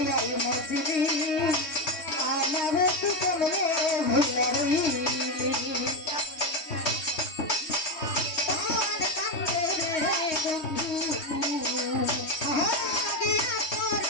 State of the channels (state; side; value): late; right; 3.2 ms